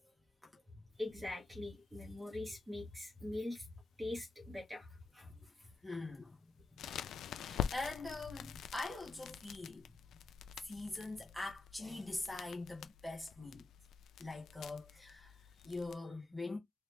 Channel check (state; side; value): quieter; right; 3.4 dB